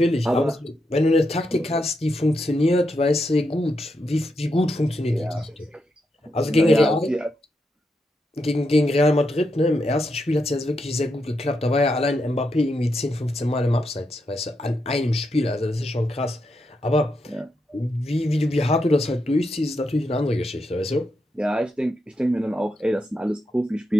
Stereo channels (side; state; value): both; normal; correlation 0.83